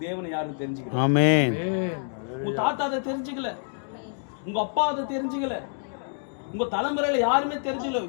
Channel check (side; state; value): right; silent; digital silence